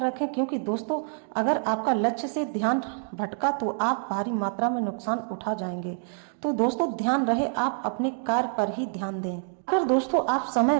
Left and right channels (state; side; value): silent; left; 60 dB below the other